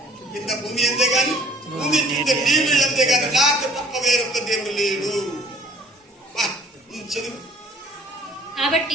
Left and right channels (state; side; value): normal; both; correlation 0.55